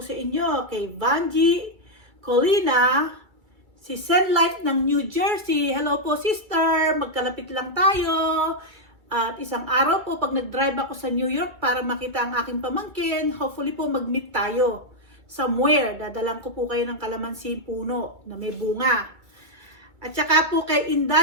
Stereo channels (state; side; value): late; left; 2.3 ms